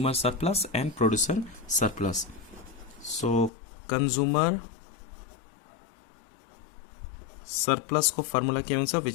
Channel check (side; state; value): right; drops out; at 3.5 s